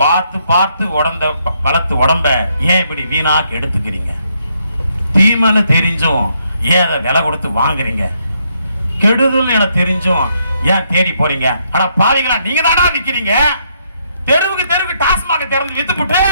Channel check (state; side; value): inverted; both; correlation -0.75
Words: பார்த்து பார்த்து வளர்த்து உடம்ப ஏன் இப்படி வீணாக்கு எடுத்துக்கிறீங்க? தீமைன்னு தெரிஞ்சும் ஏன் அதை விலை கொடுத்து வாங்குறீங்க? கெடுதல் என தெரிஞ்சும் ஏன் தேடி போறீங்க? ஆனா பாருங்களா, நீங்க தானா நிக்கிறீங்க. தெருவுக்கு டாஸ்மாக திறந்து வித்துப்புட்டு